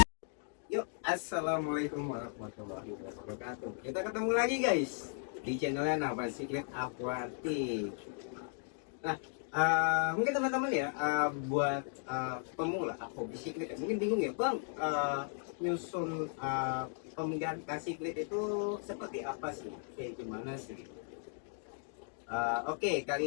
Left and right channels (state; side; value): silent; right; 54 dB below the other